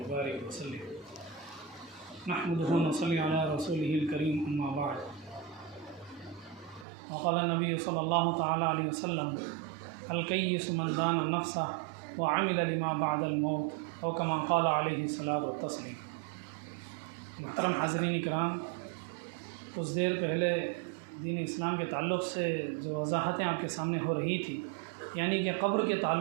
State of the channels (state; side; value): drops out; left; at 6.9 s